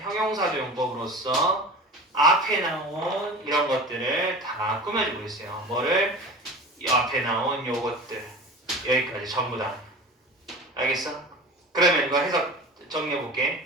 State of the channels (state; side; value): normal; both; correlation 0.35